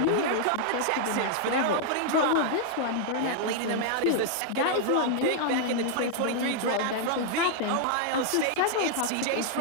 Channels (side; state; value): both; different; correlation 0.00